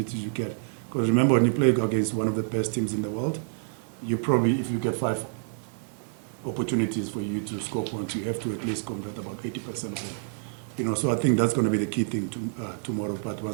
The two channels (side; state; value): left; silent; digital silence